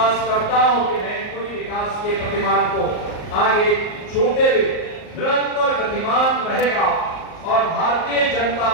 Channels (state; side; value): late; right; 38 ms